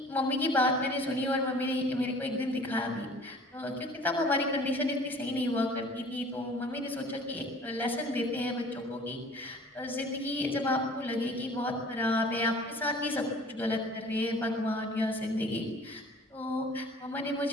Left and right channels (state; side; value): normal; both; correlation 0.48